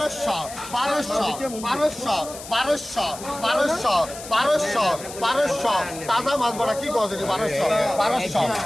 1200 1200 1200 1200 1200 তাজা মাছ বড়া কি গজ 1200 1200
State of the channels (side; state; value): left; noise; hiss, 13 dB below the sound